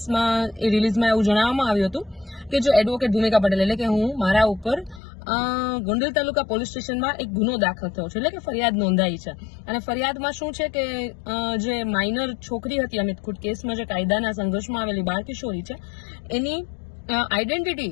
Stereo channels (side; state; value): right; drops out; at 5.0 s